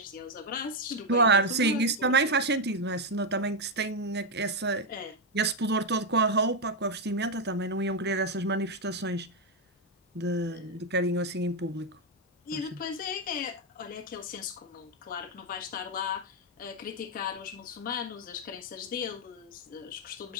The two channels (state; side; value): normal; both; correlation 0.03